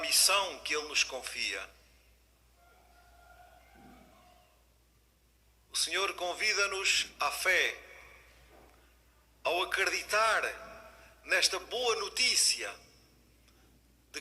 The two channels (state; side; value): identical; both; correlation 1.00